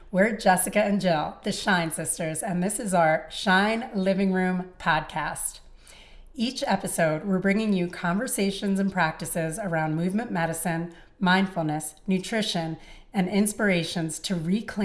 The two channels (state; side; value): identical; both; correlation 1.00